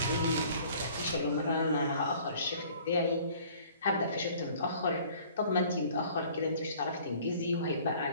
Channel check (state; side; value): inverted; both; correlation -0.53